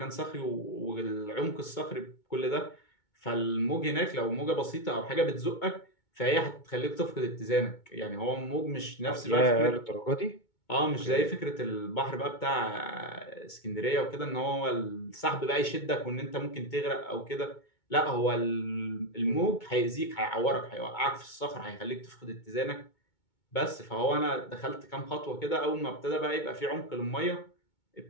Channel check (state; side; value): late; right; 2.2 ms